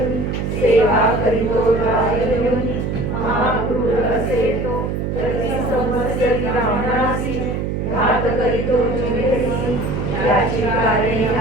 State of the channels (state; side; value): noise; right; hum, 2 dB below the sound